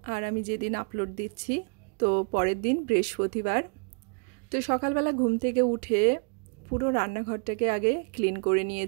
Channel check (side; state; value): left; quieter; 39.0 dB